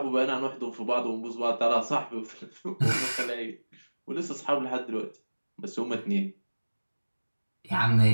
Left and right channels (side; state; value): both; inverted; correlation -1.00